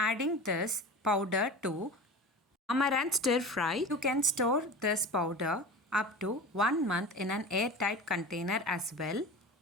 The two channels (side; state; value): both; normal; correlation 0.32